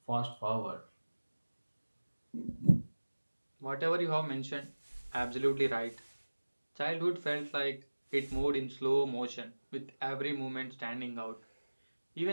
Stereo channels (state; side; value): inverted; both; correlation -1.00